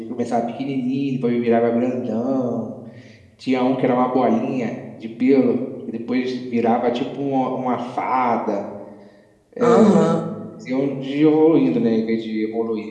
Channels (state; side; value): identical; both; correlation 1.00